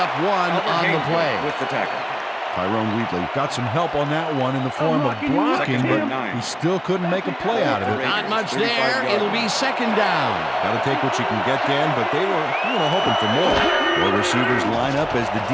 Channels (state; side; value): identical; both; correlation 1.00